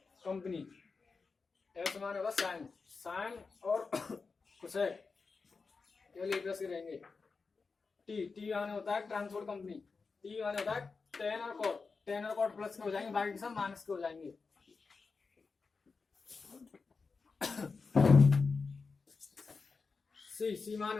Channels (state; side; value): quieter; right; 4.6 dB